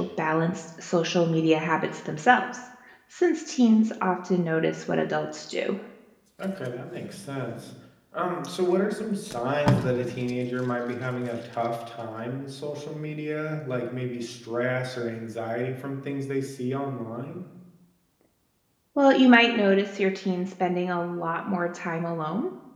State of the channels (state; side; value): identical; both; correlation 1.00